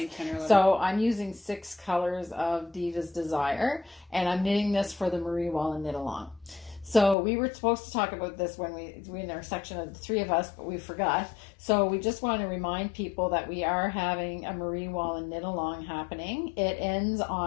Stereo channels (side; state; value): right; drops out; at 7.2 s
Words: 10 or 11. So I'm using 6 colors of Diva's Desire, and I'm knitting this for the Marie Wallin knit along. So we were supposed to talk about this when we in our section of the 3 of us, but we forgot. So we just want to remind people that we are having a Marie Wallin knit along happening. It ends